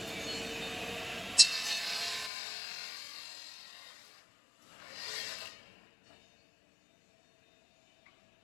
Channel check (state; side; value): drops out; right; at 2.3 s